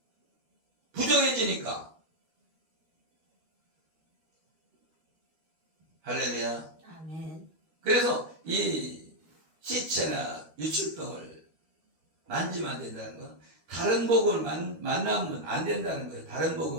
부정해지니까. 할렐루야. 아멘. 그래서 이 시체나 유출병을 만지면 안 된다는 건 다른 복음을 만나면 안 된다는 거예요. 다른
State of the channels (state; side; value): late; left; 13 ms